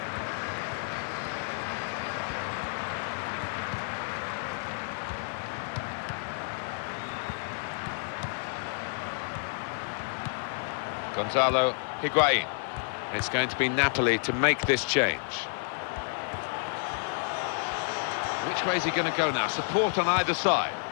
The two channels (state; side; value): silent; right; 58 dB below the other